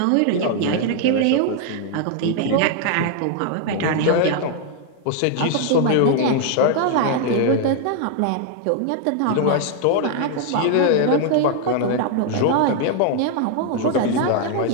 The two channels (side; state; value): both; different; correlation 0.00